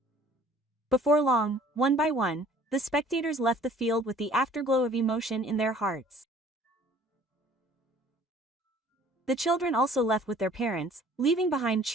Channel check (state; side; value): normal; both; correlation 0.53